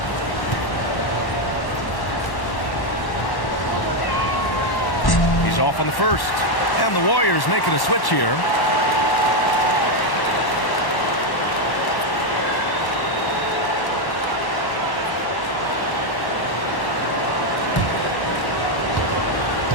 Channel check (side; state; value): right; late; 1.1 ms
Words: He's off on the first. And the Warriors making a switch here.